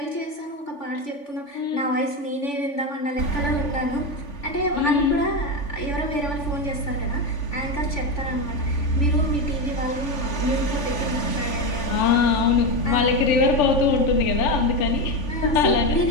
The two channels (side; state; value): right; late; 3.5 ms